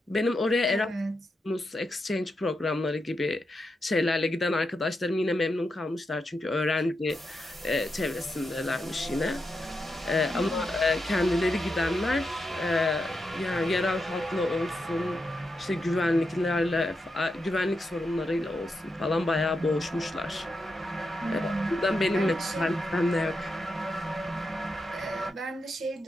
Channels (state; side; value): normal; both; correlation 0.86